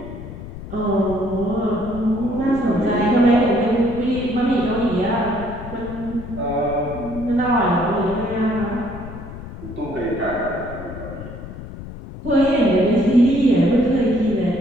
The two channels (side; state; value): left; noise; rumble, 12 dB below the sound